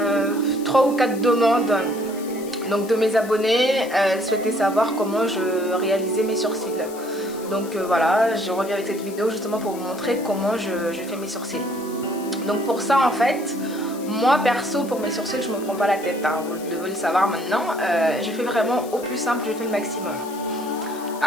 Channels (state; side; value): noise; left; hiss, 18 dB below the sound